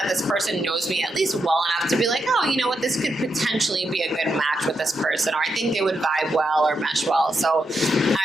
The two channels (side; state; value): both; normal; correlation 0.84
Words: this person knows me at least well enough to be like, oh, you know what, this could potentially be a good match with this person, or I think they would vibe well or mesh well. So